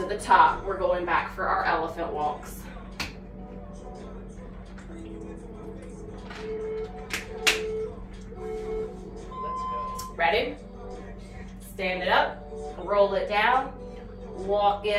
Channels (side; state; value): both; identical; correlation 1.00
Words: the top. We're going back for our elephant walks. Ready? Stand it up, roll it down, walk